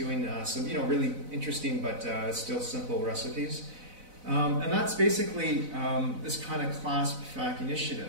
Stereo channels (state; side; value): late; left; 4.0 ms